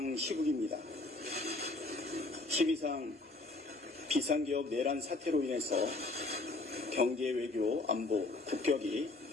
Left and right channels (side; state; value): right; quieter; 3.1 dB